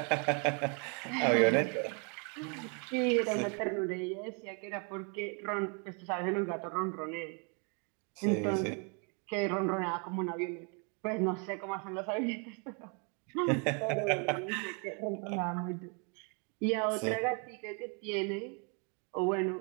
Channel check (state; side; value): quieter; left; 36.7 dB